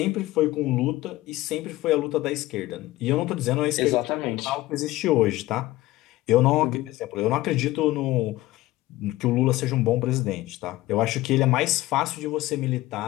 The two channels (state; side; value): quieter; right; 17.6 dB